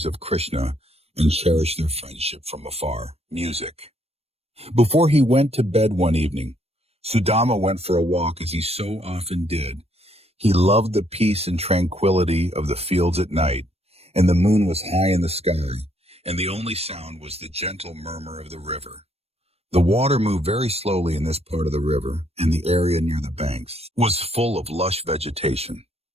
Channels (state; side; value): late; left; 0.29 ms